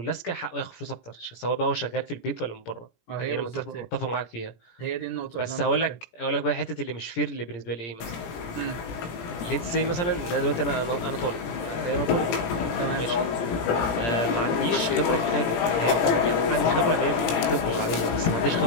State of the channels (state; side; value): late; right; 17 ms